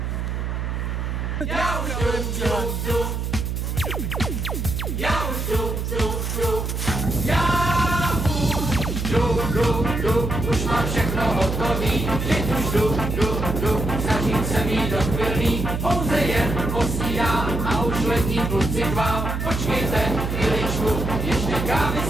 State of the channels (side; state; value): right; noise; hum, 2 dB below the sound